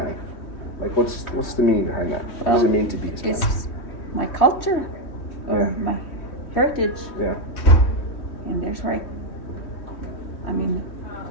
Like, what's the meaning behind that? What does it mean to be Hispanic? It's my culture, or Yeah. my heritage, Yeah. and there's where I mean,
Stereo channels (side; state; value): right; late; 3.1 ms